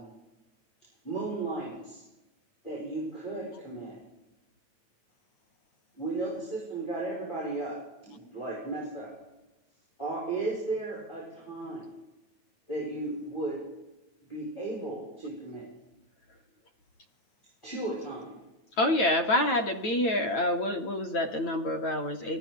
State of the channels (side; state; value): right; late; 9.0 ms